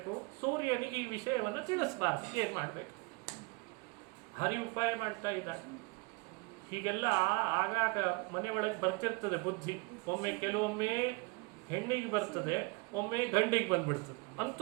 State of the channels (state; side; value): quieter; left; 27.5 dB